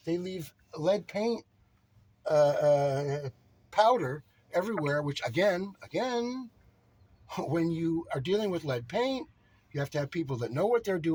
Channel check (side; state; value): both; identical; correlation 1.00